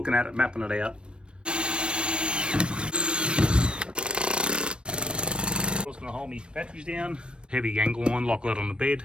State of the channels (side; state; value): left; late; 0.056 ms